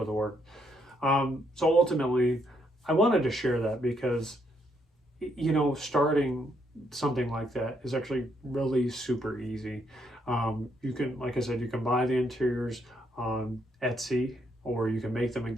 of work. So ultimately, I wanted to share that because, you know, starting something like that is actually really super easy. You can, like I said, you can buy the interiors on Etsy, or you can make them in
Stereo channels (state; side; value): normal; both; correlation 0.74